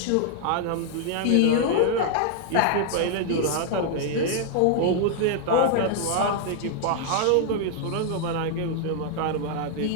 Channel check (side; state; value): both; different; correlation 0.00